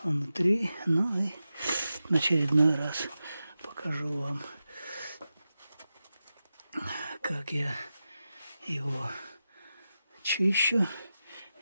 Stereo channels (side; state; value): both; inverted; correlation -0.92